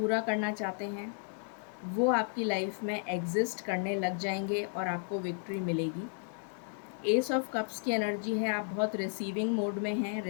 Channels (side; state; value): right; silent; 56 dB below the other